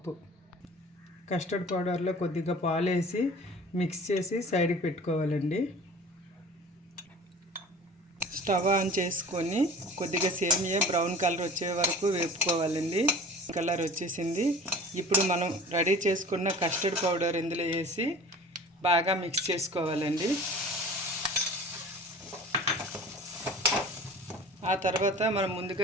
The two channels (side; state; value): both; normal; correlation 0.42